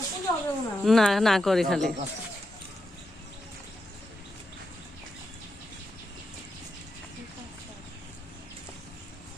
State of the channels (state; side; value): normal; both; correlation 0.86